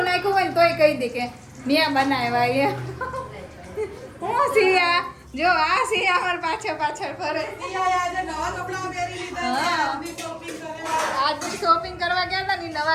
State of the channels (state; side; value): identical; both; correlation 1.00